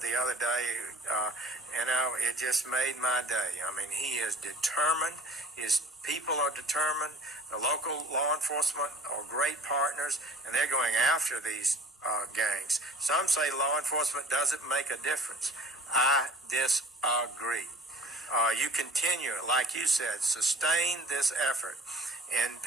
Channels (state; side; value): normal; both; correlation 0.49